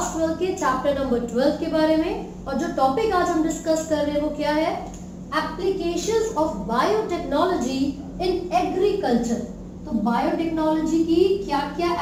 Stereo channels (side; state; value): both; identical; correlation 1.00